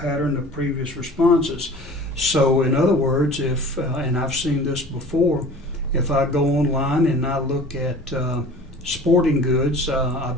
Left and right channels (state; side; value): normal; both; correlation 0.42